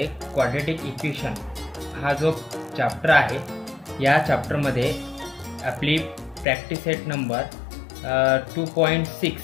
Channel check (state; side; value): drops out; right; at 6.5 s